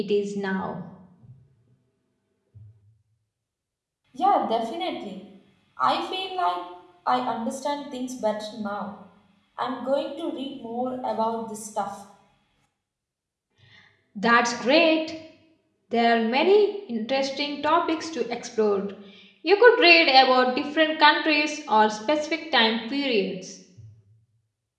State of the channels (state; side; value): identical; both; correlation 1.00